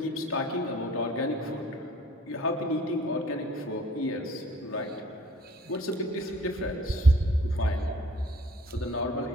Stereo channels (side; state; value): both; normal; correlation 0.54